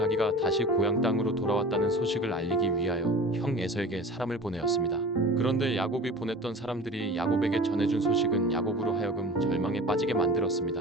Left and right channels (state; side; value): normal; both; correlation 0.38